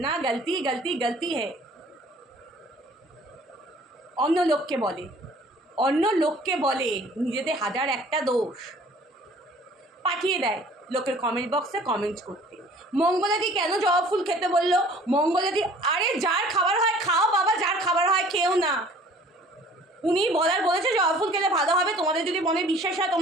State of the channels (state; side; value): normal; both; correlation 0.52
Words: गलती है। অন্য লোককে বলে নিজেদের হাজার একটা দোষ পাঠিয়ে দেয় লোকের কমেন্ট বক্সে কমেন্ট করতে। মঙ্গলাদি কেন জবা ফুল খেতে বললো? মঙ্গলাদি, আরে যার খাবার হয় খাও বাবা, যার খাবার হয় খেও না। উনি বলেছে জবা ফুল খেলে ভালো হবে, তোমাদের যদি মনে বিশ্বাস হয়